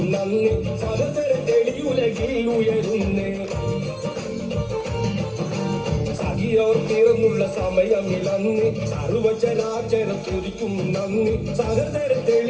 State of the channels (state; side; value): identical; both; correlation 1.00